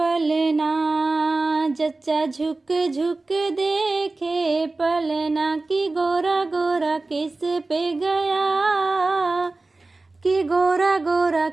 जच्चा झुक झुक देखे पलना कि गोरा गोरा किस पे गया, कि गोरा गोरा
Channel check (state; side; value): quieter; left; 3.3 dB